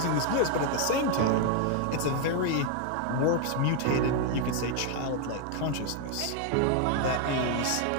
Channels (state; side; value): different; both; correlation 0.01